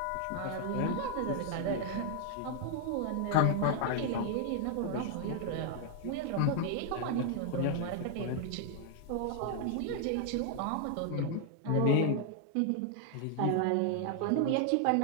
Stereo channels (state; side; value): different; both; correlation 0.00